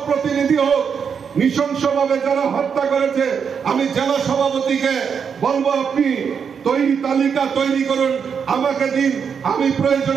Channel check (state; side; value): quieter; left; 6.7 dB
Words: প্রতিনিধি হোক, নৃশংসভাবে যারা হত্যা করেছে, আমি জেলা সভাপতিকে বলবো আপনি তালিকা তৈরি করুন, আমাকে দিন, আমি